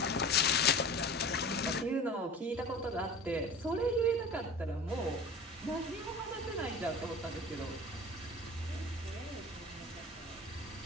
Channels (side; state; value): both; normal; correlation 0.37